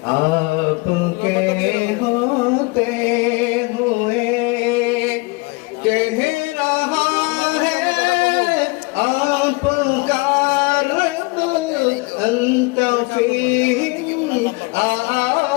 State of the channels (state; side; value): quieter; right; 26.4 dB